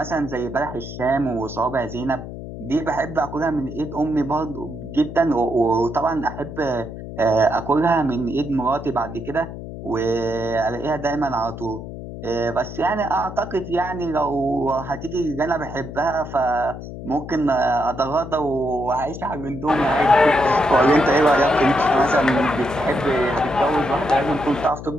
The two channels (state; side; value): noise; left; hum, 10 dB below the sound